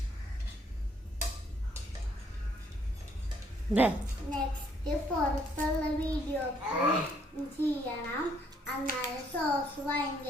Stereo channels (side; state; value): both; normal; correlation 0.67